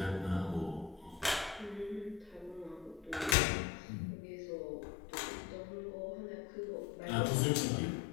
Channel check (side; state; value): right; drops out; at 3.4 s